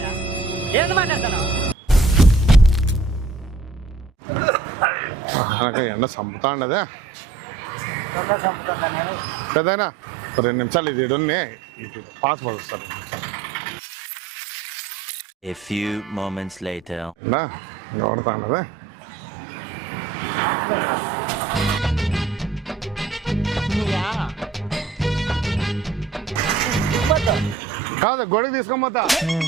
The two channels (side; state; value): left; quieter; 4.5 dB